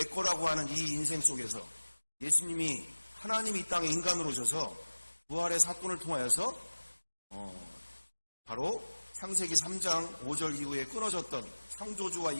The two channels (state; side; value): inverted; both; correlation -1.00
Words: 거라고 하는 이 인생 속에서 예수님이 하나님이 이 땅에 인간으로 오셔서 부활의 사건을 통하여서 바로 창세기 3장 5절 이후에 끊어졌던 창조주와